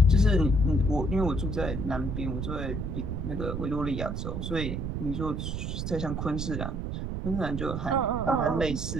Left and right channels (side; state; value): right; noise; rumble, 3 dB below the sound